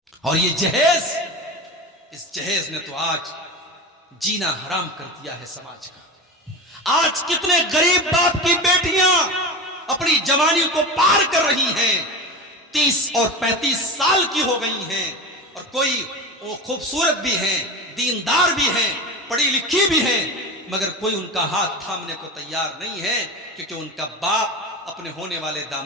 और ये जहेज, इस जहेज ने तो आज जीना हराम कर दिया है समाज का। आज कितने गरीब बाप की बेटियां अपनी जवानी को पार कर रही हैं, 30 और 35 साल की हो गई हैं, और कोई वो खूबसूरत भी हैं, दीनदार भी हैं, पढ़ी लिखी भी हैं, मगर कोई उनका हाथ थामने को तैयार नहीं है, क्योंकि उनका बाप अपने होने वाले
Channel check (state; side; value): normal; both; correlation 0.27